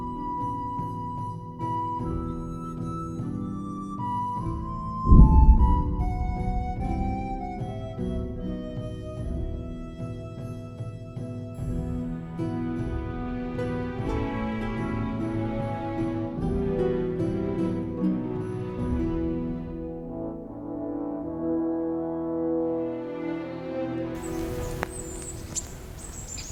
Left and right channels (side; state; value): both; identical; correlation 1.00